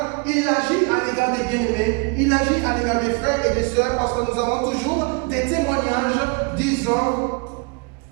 il agit à l'égard des bien-aimés, il agit à l'égard des frères et des sœurs, parce que nous avons toujours des témoignages disant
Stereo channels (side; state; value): left; quieter; 31.5 dB